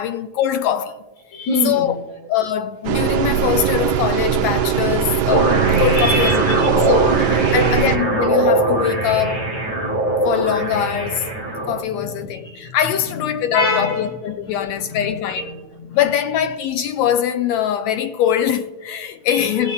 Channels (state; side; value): late; right; 9.1 ms